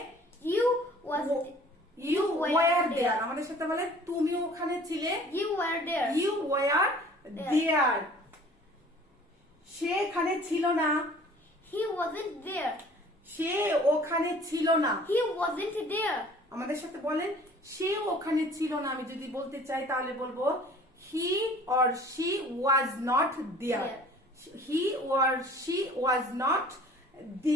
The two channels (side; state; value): both; normal; correlation 0.49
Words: You was You were were there. there. আমাদের সাথে বলেন তুমি ওখানে ছিলে। you were there. You were there. সে এখানে ছিল না। He wasn't there. সে ওখানে ছিল না। He wasn't there. আমাদের সাথে বলেন সে ওখানে ছিল না। আমি যদি বলতে চাই তাহলে বলবো he or she was not there. He or she was not